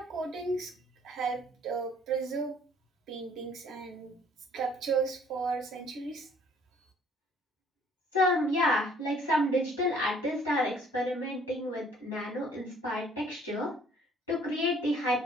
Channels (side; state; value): both; normal; correlation 0.58